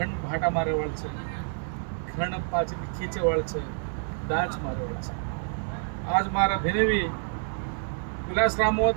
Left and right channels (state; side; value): silent; left; 59 dB below the other